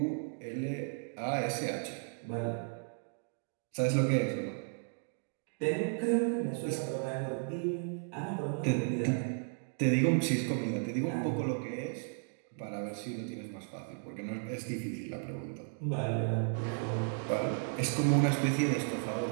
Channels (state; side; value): silent; left; 55 dB below the other